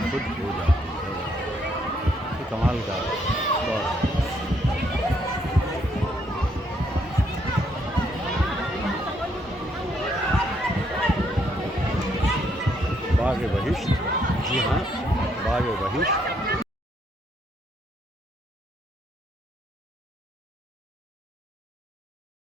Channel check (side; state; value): both; normal; correlation 0.72